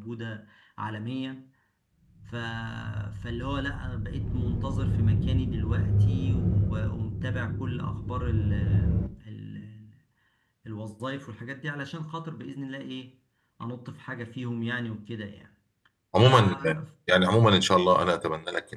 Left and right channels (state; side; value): identical; both; correlation 1.00